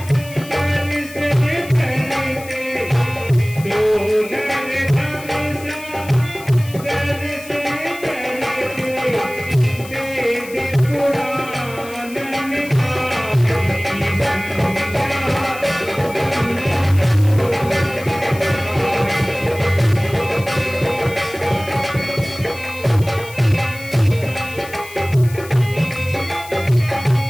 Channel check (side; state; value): left; noise; hiss, 17 dB below the sound